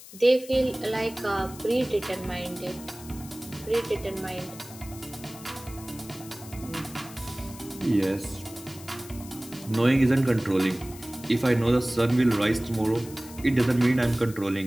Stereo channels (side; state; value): left; noise; hiss, 17 dB below the sound